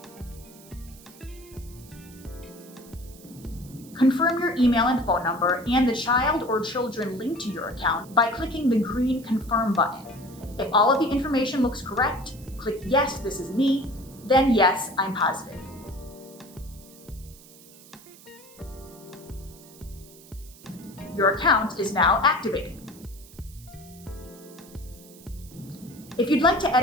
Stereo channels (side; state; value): right; noise; hiss, 22 dB below the sound